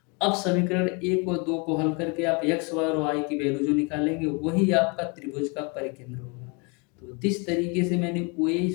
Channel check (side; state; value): right; quieter; 31.3 dB